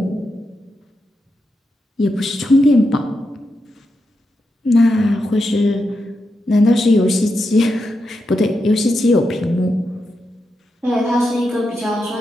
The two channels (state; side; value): normal; both; correlation 0.86